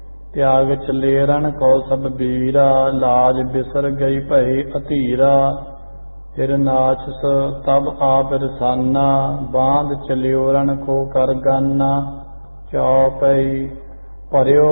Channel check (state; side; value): inverted; both; correlation -1.00